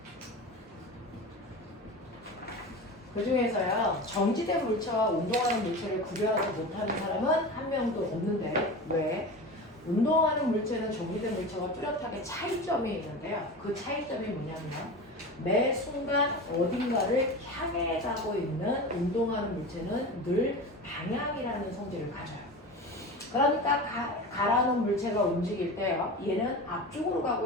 그 중에서요, 정지된 물체와 운동하는 물체를 구별하지 못하는 사람은 한 명도 없는데, 왜? 운동하는 물체는 정지된 물체와 뚜렷하게 차이점이 있는데요. 그 차이점이 뭐냐면, 매 순간 어딘가를 향해 가고 있는 운동하는 물체는 늘 방향이라는 성질을 가져요. 그러니까 가라는 물체가 움직일 때요, 얘는 앞쪽으로 가고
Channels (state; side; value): normal; both; correlation 0.29